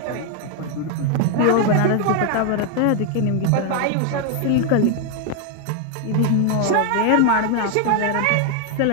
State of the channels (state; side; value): different; both; correlation 0.01